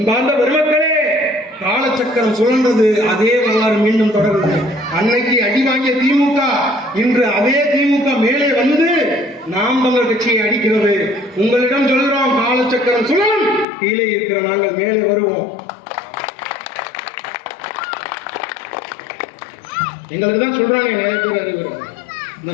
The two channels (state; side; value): drops out; right; at 13.7 s